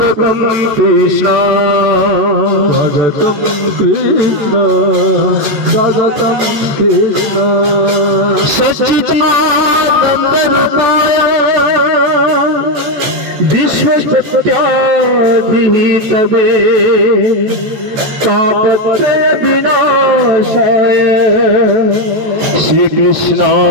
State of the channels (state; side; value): late; left; 14 ms